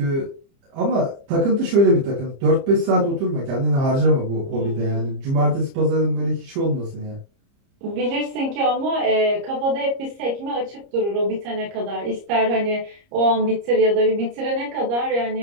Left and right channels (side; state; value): left; late; 30 ms